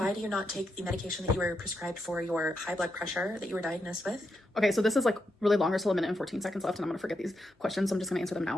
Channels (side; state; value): both; normal; correlation 0.84